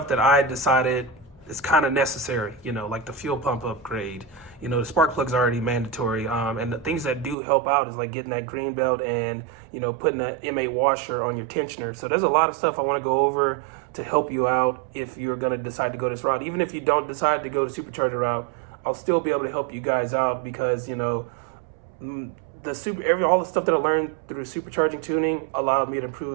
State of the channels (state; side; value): drops out; left; at 7.4 s